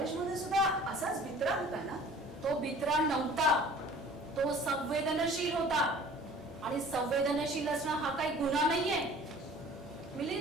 सुद्धा असाच भित्रा होता ना? तो बित्रा नव्हता, तो संवेदनशील होता. आणि संवेदनशील असणं हा काही गुन्हा नाहीये.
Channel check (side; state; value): both; normal; correlation 0.47